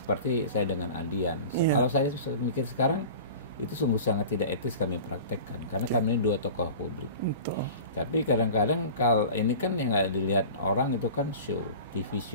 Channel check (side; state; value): both; inverted; correlation -0.38